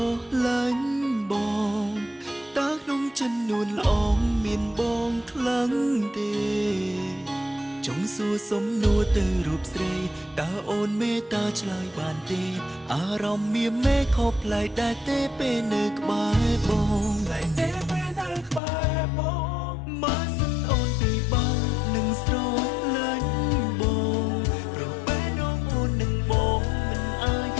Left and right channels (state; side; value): drops out; right; at 18.6 s